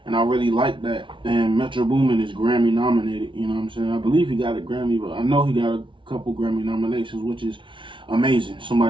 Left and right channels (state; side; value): late; left; 0.24 ms